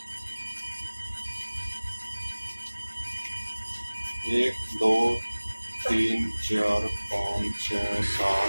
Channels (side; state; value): both; inverted; correlation -1.00